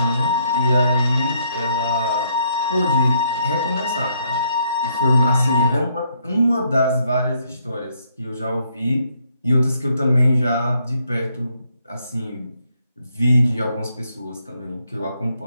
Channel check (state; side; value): inverted; both; correlation -0.72